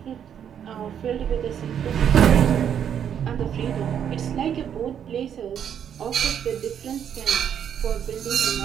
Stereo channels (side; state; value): left; quieter; 8.8 dB